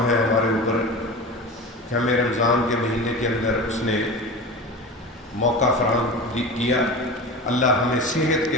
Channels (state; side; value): normal; both; correlation 0.30